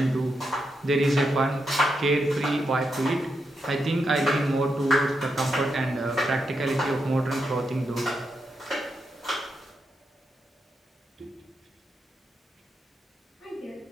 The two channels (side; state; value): both; normal; correlation 0.84